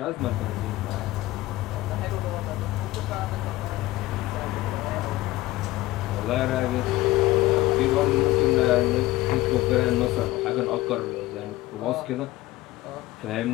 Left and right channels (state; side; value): quieter; right; 17.4 dB